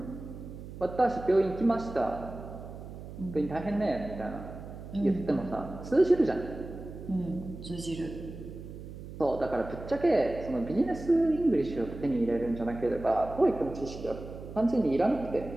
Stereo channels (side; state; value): right; noise; hum, 12 dB below the sound